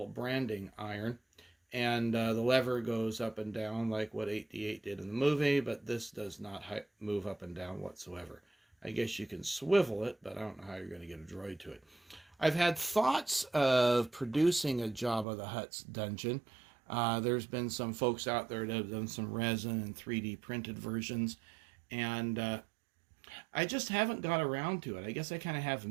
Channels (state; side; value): drops out; left; at 15.2 s